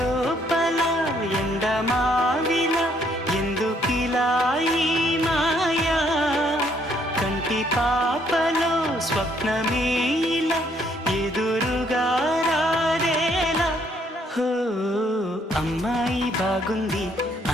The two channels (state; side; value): normal; both; correlation 0.68